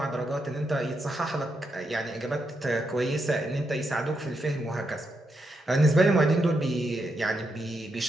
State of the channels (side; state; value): both; normal; correlation 0.82